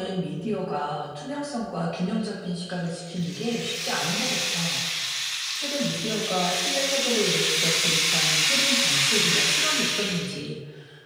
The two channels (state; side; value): identical; both; correlation 1.00